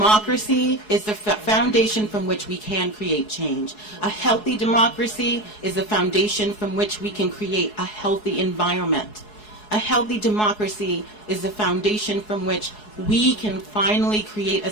is the foundation from which we can create change. A healthy democracy is the foundation from which we can create a healthy environment. A healthy democracy is the foundation from which we can finally create a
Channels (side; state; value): right; late; 4.7 ms